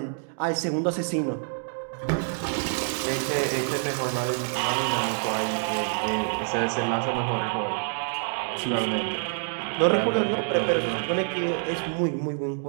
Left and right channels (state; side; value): silent; left; digital silence